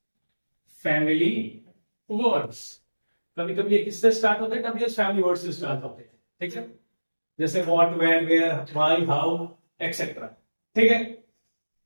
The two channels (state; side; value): inverted; both; correlation -1.00